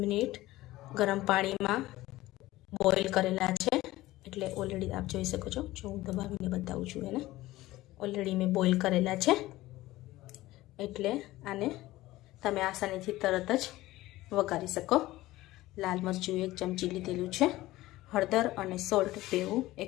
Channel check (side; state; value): right; quieter; 17.3 dB